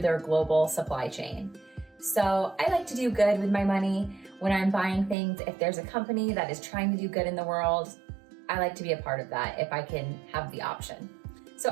global supply chain. So I like to do good with my money when I'm buying things. If there's a company that is trying to do good in the world, I like to be a part of that if I can have the option. So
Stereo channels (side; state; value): left; drops out; at 5.2 s